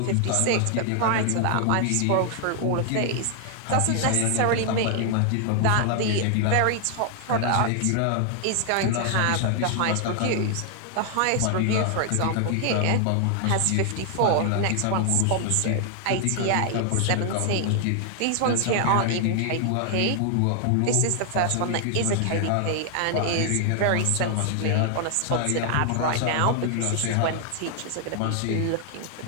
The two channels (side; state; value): both; different; correlation 0.00